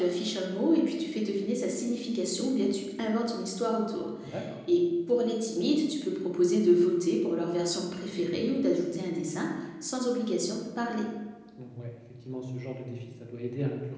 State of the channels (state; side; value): identical; both; correlation 1.00